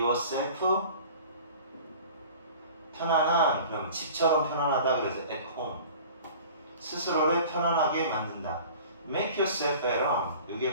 편안한, 그럼 집처럼 편안하다 그래서 at home. 스스로를 편안하게 만든다. make yourself at home.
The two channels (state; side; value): inverted; both; correlation -0.43